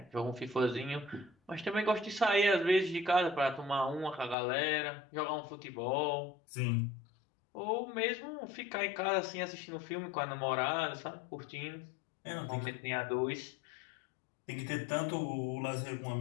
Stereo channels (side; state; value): right; drops out; at 4.4 s